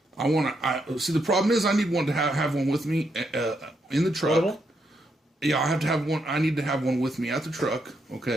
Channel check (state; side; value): normal; both; correlation 0.79